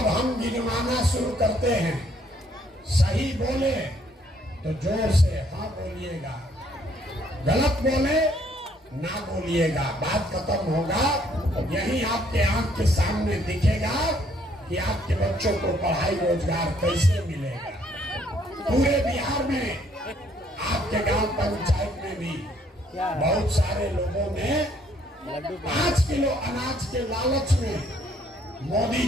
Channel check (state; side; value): normal; both; correlation 0.66